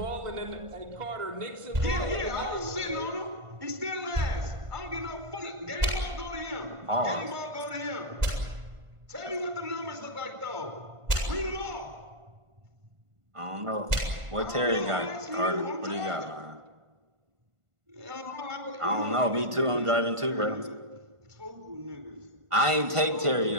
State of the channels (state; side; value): late; left; 1.5 ms